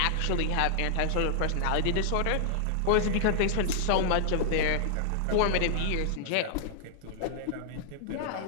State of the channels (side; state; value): both; different; correlation -0.01